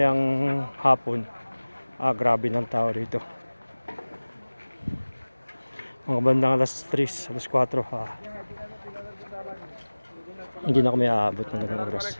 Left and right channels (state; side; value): inverted; both; correlation -1.00